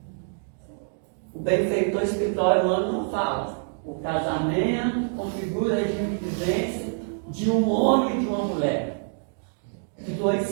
O benfeitor espiritual não fala. O casamento configura o regime de vivência de um homem e de uma mulher. De dois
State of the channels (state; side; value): silent; left; digital silence